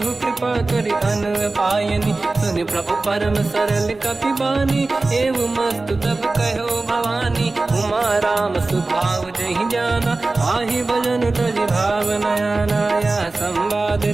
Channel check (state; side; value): quieter; left; 3.3 dB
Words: कृपा करि अन पायनी सुन प्रभु परम सरल कपि बानी एव मस्त तब कहो भवानी उमा राम सुभाव जहि जाना आहि भजन तज भाव नयाना या संवाद